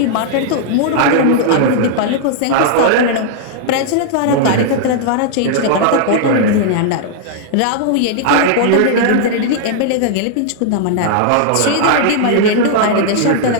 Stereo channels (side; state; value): both; different; correlation -0.01